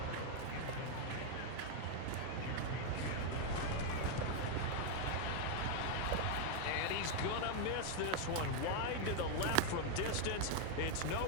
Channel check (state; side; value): different; both; correlation 0.01